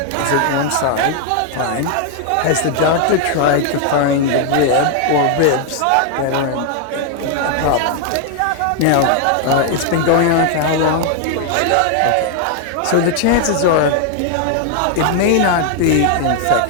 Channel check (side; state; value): both; different; correlation 0.00